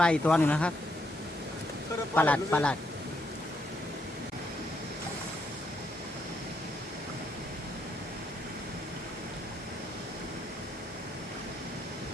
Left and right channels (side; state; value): both; normal; correlation 0.76